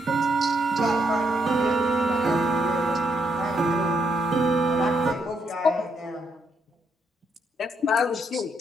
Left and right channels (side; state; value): both; normal; correlation 0.76